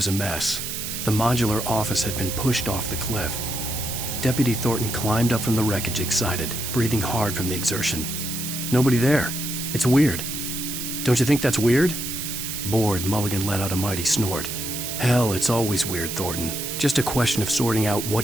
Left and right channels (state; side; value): noise; right; hiss, 5 dB below the sound